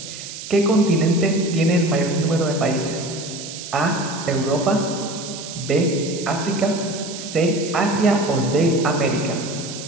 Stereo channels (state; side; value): noise; right; hiss, 11 dB below the sound